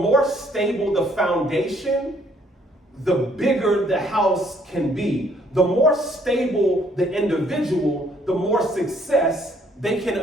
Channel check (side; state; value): both; normal; correlation 0.65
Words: stable the foundation, the bigger the house can be. The more stable the individual, the more success they can